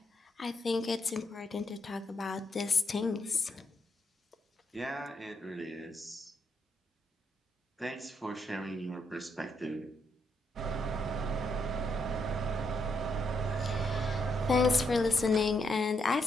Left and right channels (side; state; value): both; normal; correlation 0.77